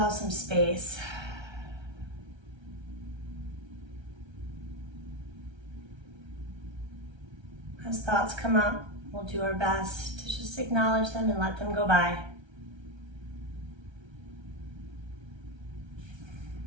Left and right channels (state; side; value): late; left; 1.3 ms